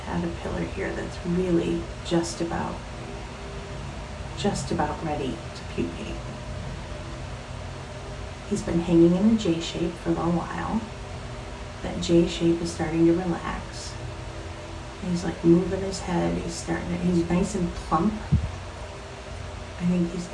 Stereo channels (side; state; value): both; identical; correlation 1.00